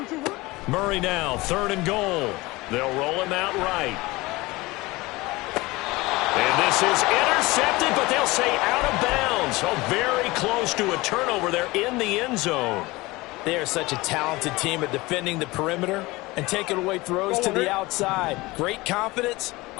Murray now, third and goal. They'll roll him out right. And this is intercepted, but they'll say out of bounds. So very close to a turnover there in the end zone. They are such a talented team at defending the perimeter and taking away throws to the outside. Great confidence,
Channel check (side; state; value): right; quieter; 21.4 dB